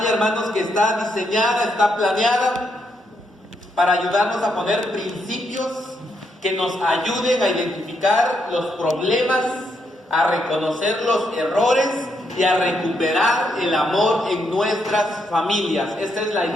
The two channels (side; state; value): both; normal; correlation 0.78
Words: hermanos, que está diseñada, está planeada para ayudarnos a poner principios que nos ayuden a identificar los problemas, a reconocer los errores y a recuperar el amor en nuestras familias. Esta es la